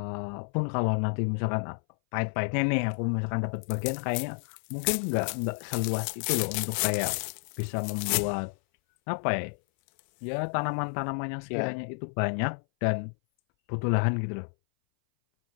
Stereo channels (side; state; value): right; silent; 58 dB below the other